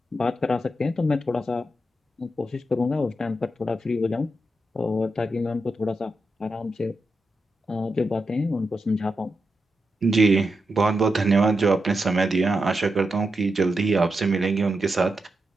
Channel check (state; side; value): normal; both; correlation 0.87